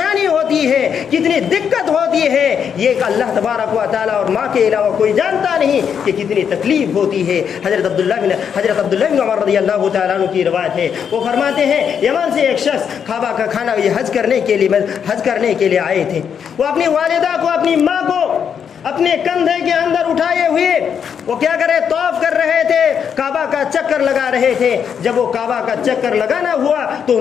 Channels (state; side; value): quieter; right; 7.6 dB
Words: ہوتی ہے، کتنی دقت ہوتی ہے، یہ اللہ تبارک و تعالیٰ اور ماں کے علاوہ کوئی جانتا نہیں کہ کتنی تکلیف ہوتی ہے۔ حضرت عبداللہ بن عمر رضی اللہ تعالیٰ عنہ کی روایت ہے، وہ فرماتے ہیں یمن سے ایک شخص کعبہ کا کھانا یہ حج کرنے کے لیے آئے تھے۔ وہ اپنی والدہ کو، اپنی ماں کو اپنے کندھے کے اندر اٹھائے ہوئے وہ کیا کرے، طواف کر رہے تھے، کعبہ کا چکر لگا رہے تھے۔ جب وہ کعبہ کا چکر لگانا ہوا تو